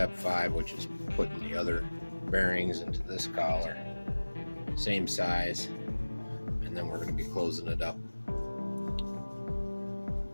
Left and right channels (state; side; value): inverted; both; correlation -1.00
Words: 5, which is putting the other bearings into this collar. Same size. And then we're going to be closing it up.